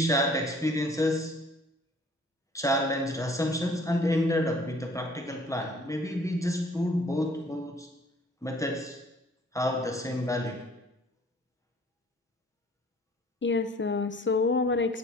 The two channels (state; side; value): normal; both; correlation 0.55